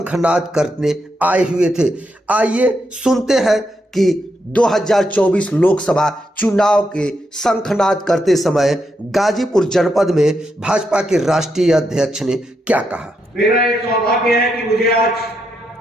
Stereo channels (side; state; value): both; normal; correlation 0.82